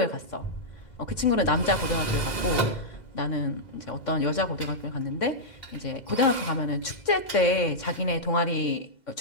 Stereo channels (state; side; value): late; right; 2.0 ms